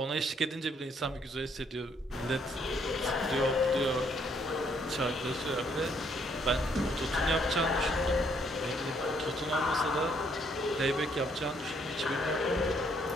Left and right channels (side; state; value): both; normal; correlation 0.69